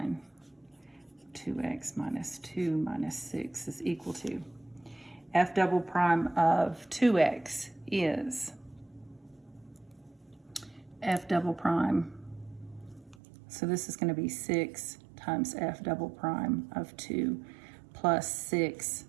2x minus 2 minus 6 is equal to f double prime of 2x is f double prime. So this is going to be 6 times f double prime of 2 plus 6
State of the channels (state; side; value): drops out; left; at 13.2 s